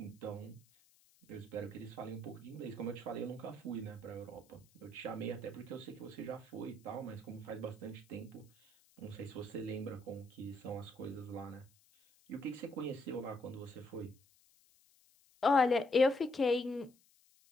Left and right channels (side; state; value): left; noise; hiss, 30 dB below the sound